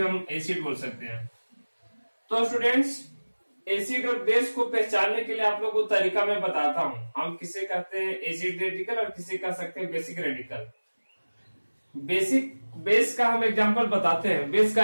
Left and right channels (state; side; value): inverted; both; correlation -1.00